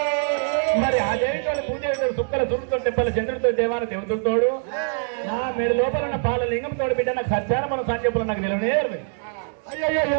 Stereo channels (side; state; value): left; silent; 60 dB below the other